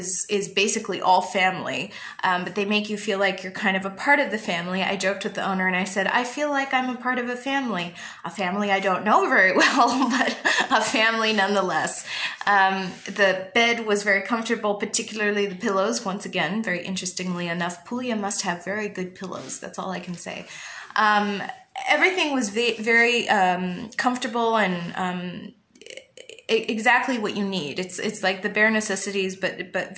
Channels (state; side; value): identical; both; correlation 1.00